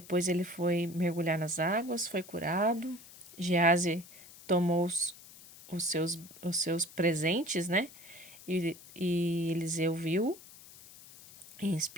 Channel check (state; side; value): noise; left; hiss, 19 dB below the sound